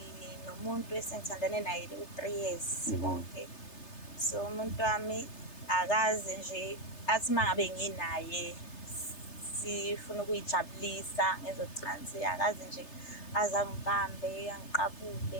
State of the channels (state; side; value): late; right; 3.3 ms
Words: Umuntu esengithandane naye u3 years bonke. So umuntu wami akaze nje athi mangabe nginaye sifuna ukuyijabulisa ngezocansi, akaze nje azangibambe